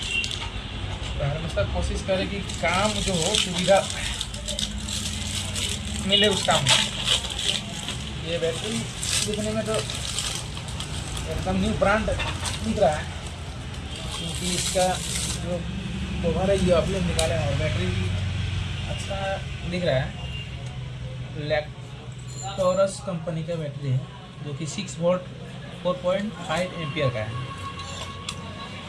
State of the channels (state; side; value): identical; both; correlation 1.00